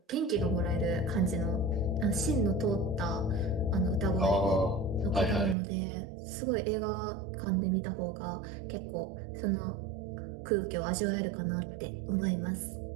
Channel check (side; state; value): left; drops out; at 5.6 s